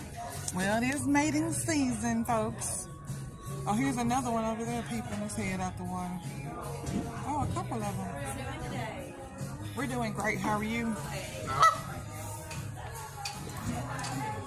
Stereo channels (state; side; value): identical; both; correlation 1.00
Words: Well, it is mating season, folks. Oh, here's another one over there peeping his head out the water. Oh, a couple of them. We're doing great. How are you?